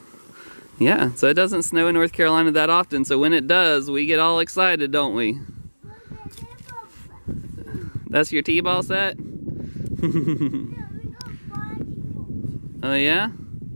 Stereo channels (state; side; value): inverted; both; correlation -1.00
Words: yeah, so it doesn't snow in North Carolina that often, so when it does, we get all excited, don't we? That's your T-ball set? Oh yeah?